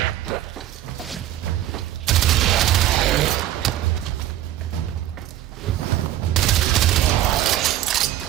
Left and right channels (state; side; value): quieter; left; 13.0 dB